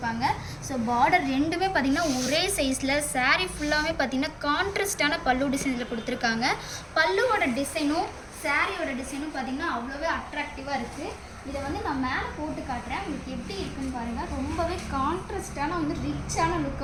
ஸோ பார்டர் ரெண்டுமே பார்த்திங்கன்னா ஒரே சைஸில், சாரீ ஃபுல்லாகவே பார்த்திங்கன்னா கான்ட்ராஸ்டான பல்லு டிசைனில் கொடுத்துருக்காங்க. பல்லுவோட டிசைனும் சாரியோட டிசைனும் பார்த்திங்கன்னா அவ்வளோவே அட்ராக்டிவாக இருக்குது. இதை நான் மேலே போட்டு காட்டுறேன், உங்களுக்கு எப்படி இருக்குன்னு பாருங்கள். ரொம்பவே கான்ட்ராஸ்டான ரிச்சான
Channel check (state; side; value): identical; both; correlation 1.00